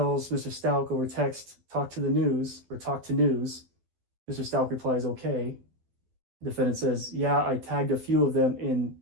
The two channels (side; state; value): left; late; 12 ms